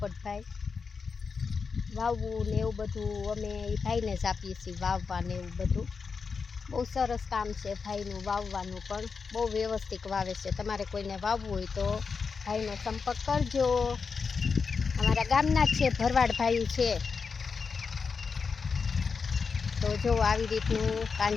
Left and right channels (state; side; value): quieter; right; 5.2 dB